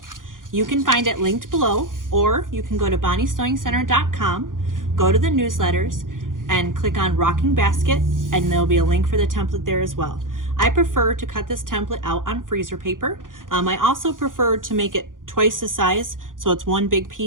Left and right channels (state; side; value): late; left; 0.89 ms